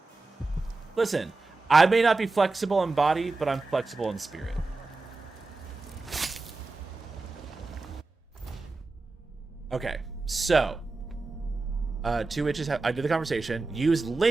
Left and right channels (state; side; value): quieter; left; 3.5 dB